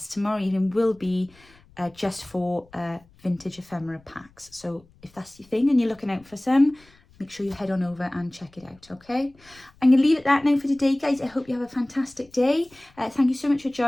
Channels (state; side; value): noise; left; rumble, 29 dB below the sound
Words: tomorrow evening will be just for vintage ephemera packs. So if that's your thing and you're looking out for some, make sure you head on over and check it out, okay? I'm going to leave it that now for today, guys. I hope you have a fantastic day. Thank you so much for